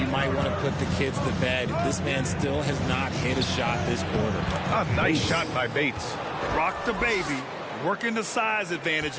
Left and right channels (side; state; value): both; identical; correlation 1.00